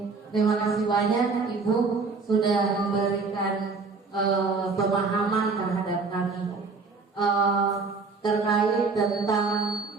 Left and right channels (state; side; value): quieter; left; 4.4 dB